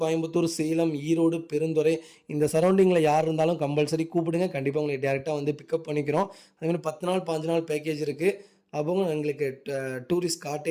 கோயம்புத்தூர், சேலம், ஈரோடு, பெருந்துறை இந்த சரௌண்டிங்கில் யார் இருந்தாலும் கம்பல்சரி கூப்பிடுங்க. கண்டிப்பாக உங்களுக்கு டேரெக்டாக வந்து பிக்கப் பண்ணிக்கிறோம். அதேமாதிரி 10 நாள் 5 நாள் பேக்கேஜ் இருக்குது. அப்போ எங்களுக்கு tourist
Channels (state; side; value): identical; both; correlation 1.00